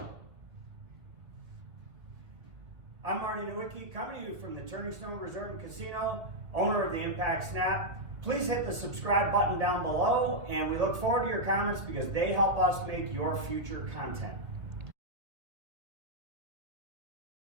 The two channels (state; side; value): late; left; 2.1 ms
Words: I'm Marty Nowicki, coming to you from the Turning Stone Resort and Casino, owner of the Impact Snap. Please hit the subscribe button down below, and we look forward to your comments because they help us make your future content.